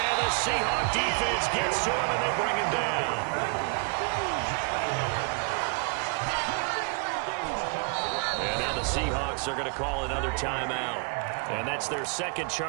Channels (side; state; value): left; quieter; 36.0 dB